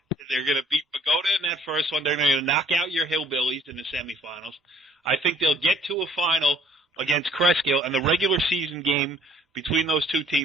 beat Pagoda in that first one. They're gonna knock out your Hillbillies in the semifinals. I think they'll get to a final against Kreskill, and the regular season game between those two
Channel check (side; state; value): both; normal; correlation 0.59